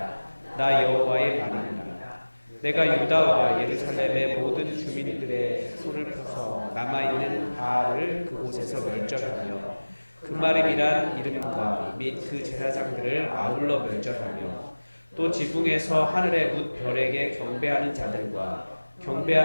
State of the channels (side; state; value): both; inverted; correlation -1.00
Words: 나 여호와의 말이니라. 내가 유다와 예루살렘의 모든 주민들의 손을 펴서 남아있는 바알을 그곳에서 멸절하며 그마림이란 이름과 및 그 제사장들을 아울러 멸절하며 또 지붕에서 하늘의 뭇 별에게 경배하는 자들과